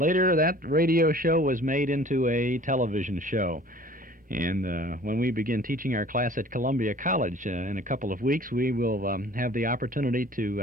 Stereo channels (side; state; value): both; normal; correlation 0.49